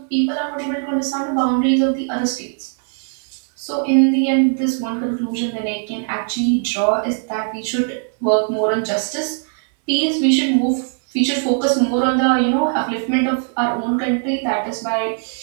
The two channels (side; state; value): left; silent; 59 dB below the other